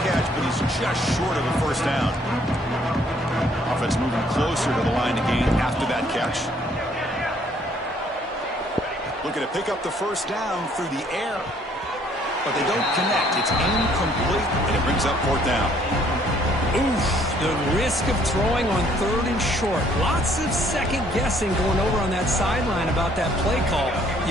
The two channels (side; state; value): both; normal; correlation 0.63